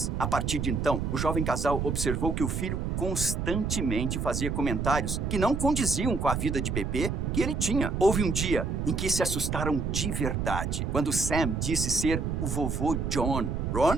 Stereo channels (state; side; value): noise; right; rumble, 1 dB below the sound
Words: a partir de então, o jovem casal observou que o filho constantemente fazia comentários que não condiziam com a vida de bebê que ele tinha. Houve um dia em que se assustaram de verdade, quando Sam disse ser o vovô John.